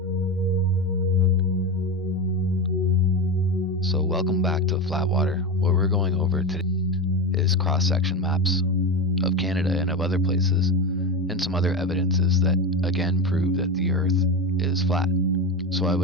So welcome back to Flatwater. What we're going over today is cross-section maps of Canada and of other places, and some other evidences that again prove that the Earth is flat. So I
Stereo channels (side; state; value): both; normal; correlation 0.20